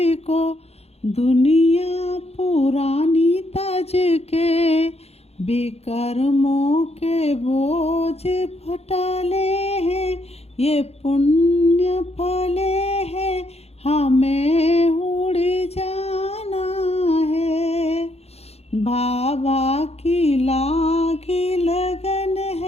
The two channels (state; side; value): late; right; 0.30 ms